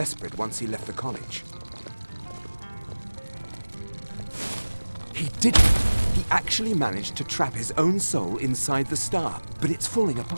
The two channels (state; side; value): inverted; both; correlation -1.00